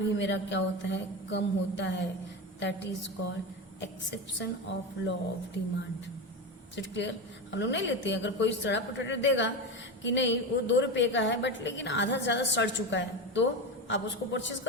मेरा क्या होता है, कम होता है. That is called exception of law of demand. Is it clear? हम लोग नहीं लेते हैं. अगर कोई सड़ा पोटैटो देगा कि नहीं वो 2 रुपए का है बट लेकिन आधा ज्यादा सड़ चुका है, तो आप उसको परचेज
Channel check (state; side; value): normal; both; correlation 0.19